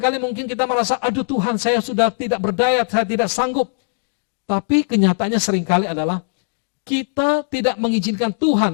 mungkin kita merasa, aduh Tuhan, saya sudah tidak berdaya, saya tidak sanggup. Tapi kenyataannya seringkali adalah, kita tidak mengizinkan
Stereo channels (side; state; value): right; silent; digital silence